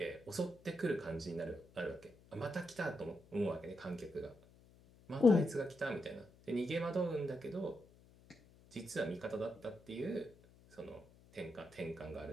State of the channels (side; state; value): left; noise; hum, 25 dB below the sound